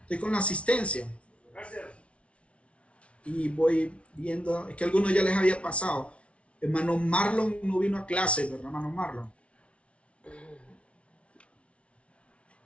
Estoy con la asistencia. Gracias. Y voy viendo, es que algunos ya les había pasado. Hermano Marlon no vino a clase, ¿verdad, hermano Marlon?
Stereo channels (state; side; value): late; right; 0.061 ms